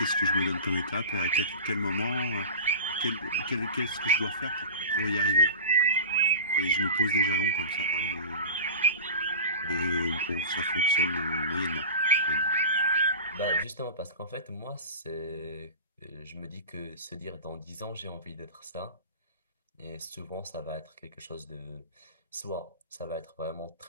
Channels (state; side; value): inverted; both; correlation -0.32